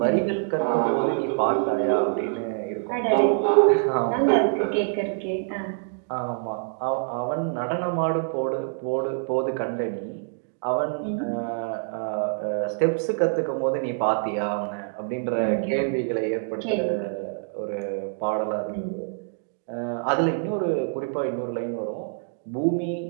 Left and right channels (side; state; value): left; silent; digital silence